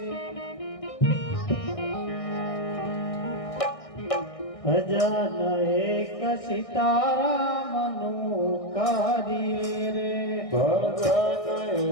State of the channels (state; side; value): late; right; 1.6 ms